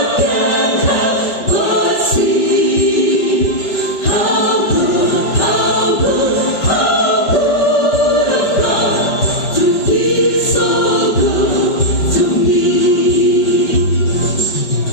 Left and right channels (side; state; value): right; late; 5.2 ms